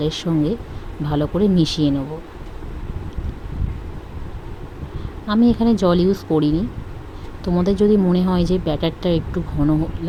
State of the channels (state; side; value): identical; both; correlation 1.00